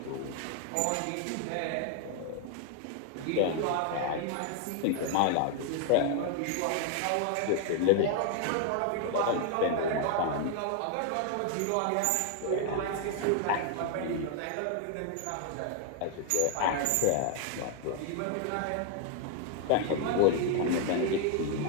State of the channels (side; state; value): both; different; correlation 0.00